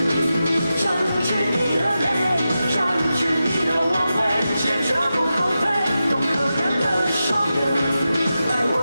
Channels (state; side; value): inverted; both; correlation -0.91